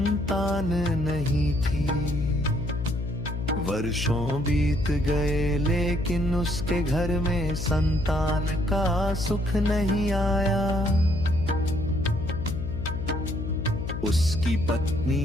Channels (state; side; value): noise; left; hum, 5 dB below the sound